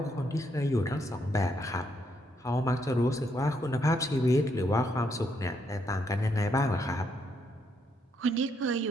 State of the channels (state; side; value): normal; both; correlation 0.75